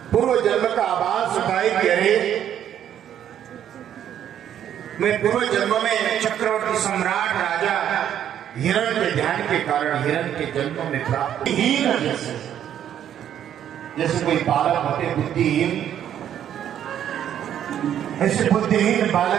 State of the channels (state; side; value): quieter; left; 10.1 dB